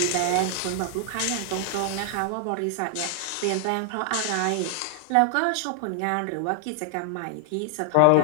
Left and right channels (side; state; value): both; different; correlation 0.00